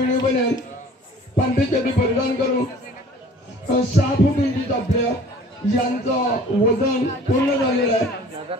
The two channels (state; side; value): normal; both; correlation 0.49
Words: बनेल पांढरीसाठी परिधान करून 6 फूट इंचीचा आपल्या यांचं वजन पूर्ण झालेलं आहे